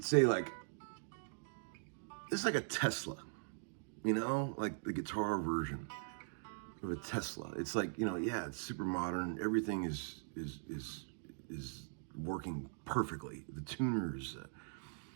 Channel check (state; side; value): silent; left; digital silence